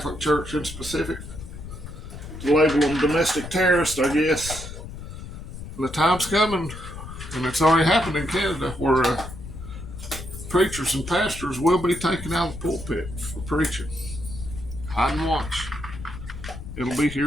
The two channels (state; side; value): noise; left; rumble, 11 dB below the sound